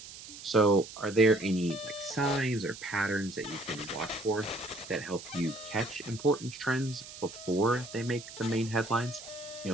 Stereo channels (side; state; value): right; noise; hiss, 14 dB below the sound